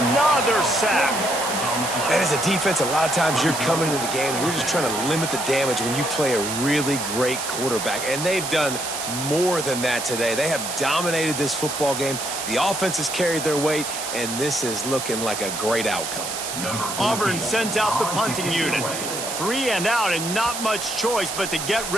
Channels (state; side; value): noise; right; hiss, 5 dB below the sound